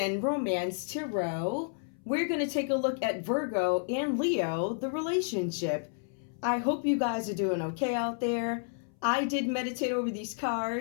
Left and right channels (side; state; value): right; silent; 57 dB below the other